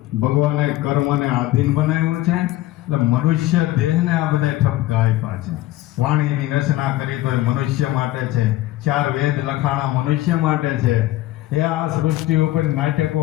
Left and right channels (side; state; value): right; quieter; 15.9 dB